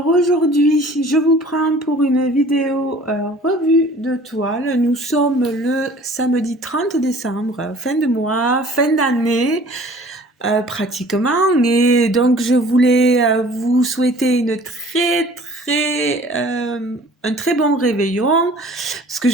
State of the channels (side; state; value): both; normal; correlation 0.49